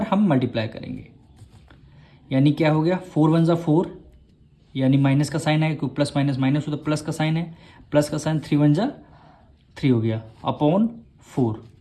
हम मल्टीप्लाई करेंगे, यानी क्या हो गया 4 1 जा 4, यानी माइनस का साइन है क्योंकि प्लस माइनस माइनस हो तो प्लस का साइन है, प्लस का साइन 3 1 जा 3 हो गया अपॉन 4।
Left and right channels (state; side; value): identical; both; correlation 1.00